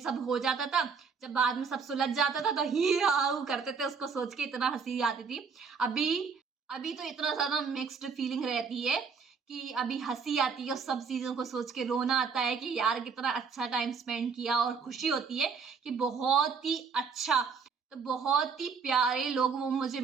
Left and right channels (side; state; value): left; quieter; 5.6 dB